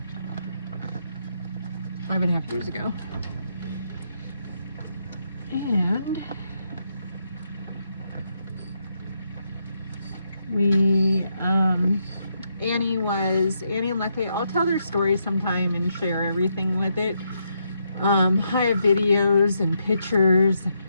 5.5 years ago. And we, Annie and Lucky, I'll tell their story sometime and share everything with it. I have videos and pictures,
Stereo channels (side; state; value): both; inverted; correlation -0.79